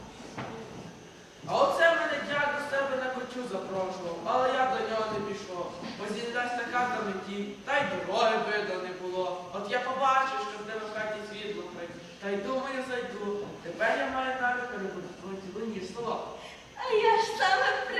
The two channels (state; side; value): identical; both; correlation 1.00